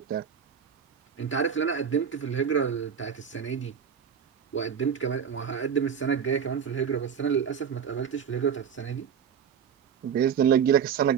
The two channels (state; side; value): quieter; left; 7.7 dB